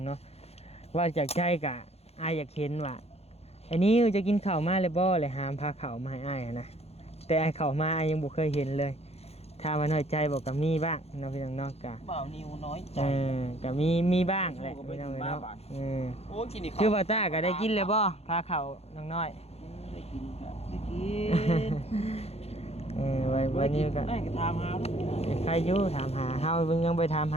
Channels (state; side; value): late; right; 0.30 ms